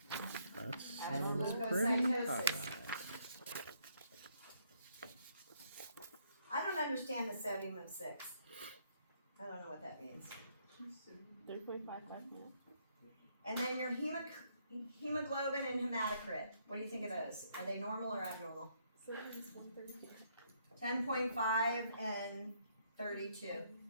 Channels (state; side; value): inverted; both; correlation -0.71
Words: That sounds pretty Leukocytosis. hot. I don't understand the sodium of 6. I don't know what that means. 3.55 now. And then your hemoglobin and hematocrit. What do you think of those? Are they normal or abnormal? 10.5 and 32.